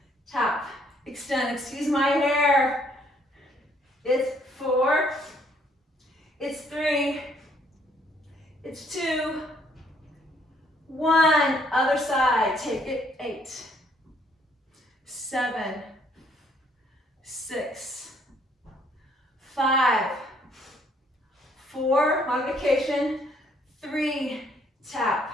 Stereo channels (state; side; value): normal; both; correlation 0.66